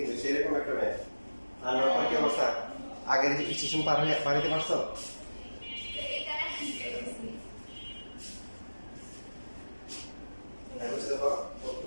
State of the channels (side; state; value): both; inverted; correlation -1.00